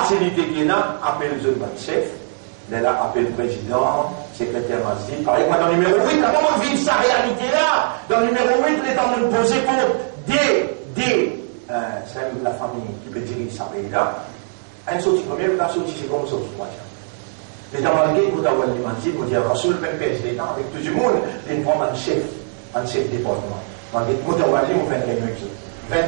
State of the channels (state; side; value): silent; left; 58 dB below the other